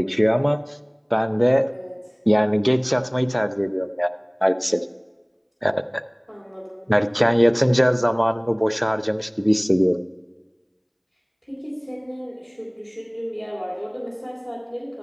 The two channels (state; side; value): identical; both; correlation 1.00